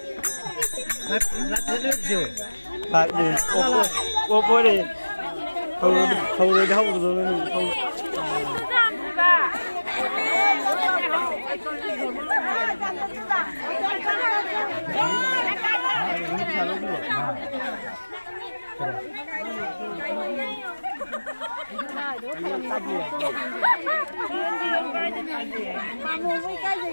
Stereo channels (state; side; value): inverted; both; correlation -1.00